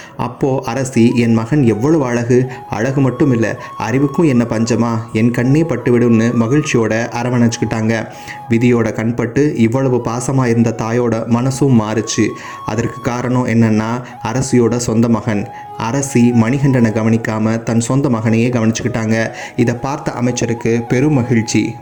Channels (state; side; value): identical; both; correlation 1.00